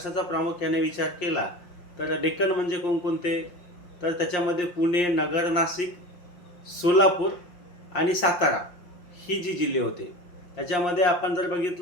प्रामुख्याने विचार केला तर डेक्कन म्हणजे कोणकोणते? तर त्याच्यामध्ये पुणे, नगर, नाशिक, सोलापूर आणि सातारा ही जी जिल्हे होते. त्याच्यामध्ये आपण जर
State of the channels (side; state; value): right; late; 5.7 ms